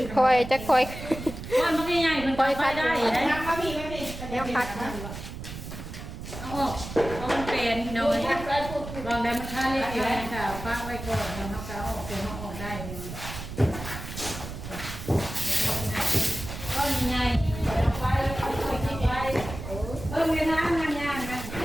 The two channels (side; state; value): right; noise; rumble, 10 dB below the sound